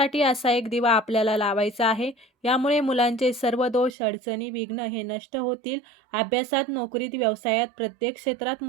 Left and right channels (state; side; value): drops out; left; at 3.9 s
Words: असा एक दिवा आपल्याला लावायचा आहे. यामुळे मुलांचे सर्व दोष, अडचणी, विघ्न हे नष्ट होतील. अभ्यासात, नोकरीत, व्यवसायात प्रत्येक क्षेत्रात